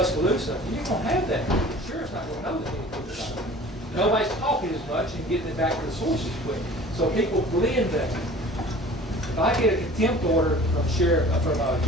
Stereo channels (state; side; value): normal; both; correlation 0.45